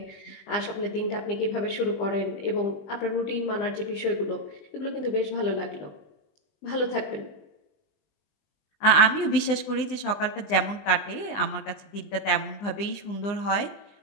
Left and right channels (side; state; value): right; late; 20 ms